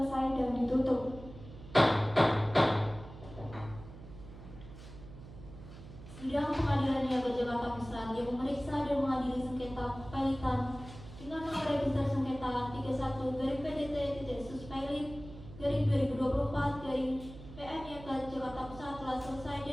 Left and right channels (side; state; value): right; noise; hum, 15 dB below the sound